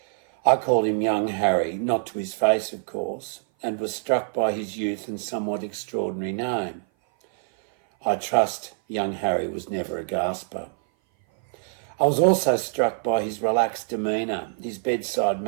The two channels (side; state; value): left; silent; 57 dB below the other